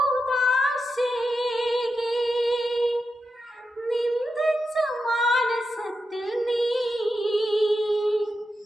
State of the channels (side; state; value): both; normal; correlation 0.88